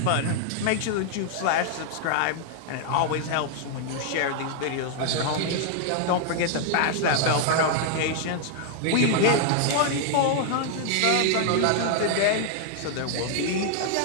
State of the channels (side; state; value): both; different; correlation -0.01